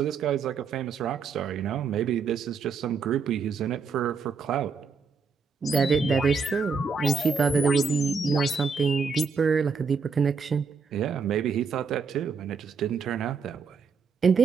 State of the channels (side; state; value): left; quieter; 5.4 dB